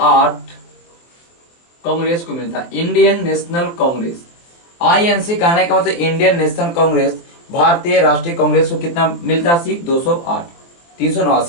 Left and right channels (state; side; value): late; right; 23 ms